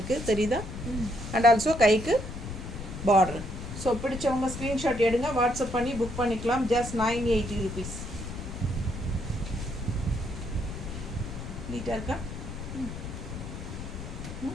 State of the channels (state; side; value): noise; left; rumble, 8 dB below the sound